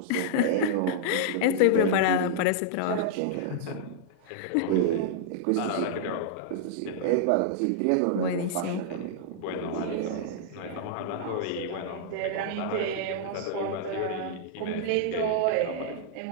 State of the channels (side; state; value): both; different; correlation -0.02